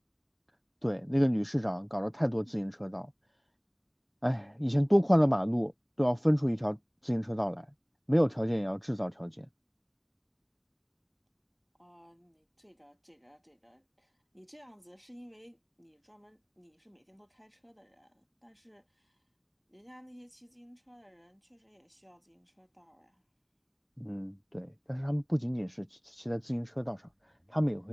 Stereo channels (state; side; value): identical; both; correlation 1.00